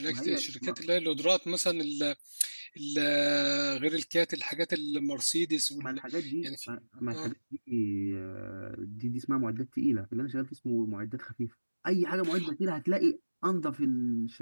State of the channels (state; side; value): inverted; both; correlation -1.00